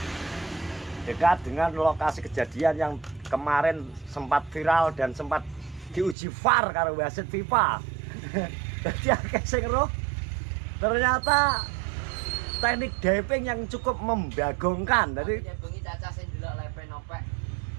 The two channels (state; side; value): drops out; left; at 6.2 s